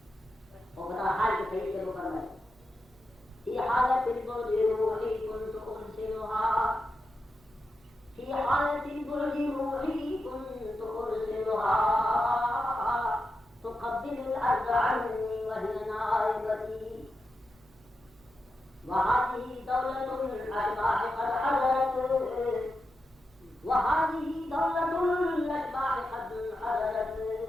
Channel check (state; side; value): normal; both; correlation 0.88